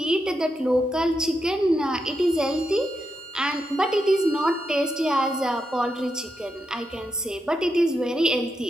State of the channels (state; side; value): normal; both; correlation 0.84